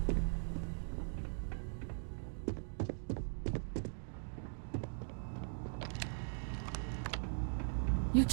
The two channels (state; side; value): silent; left; digital silence